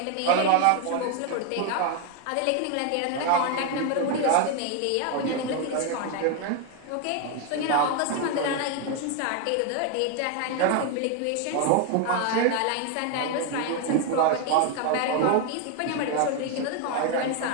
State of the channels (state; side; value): different; both; correlation 0.01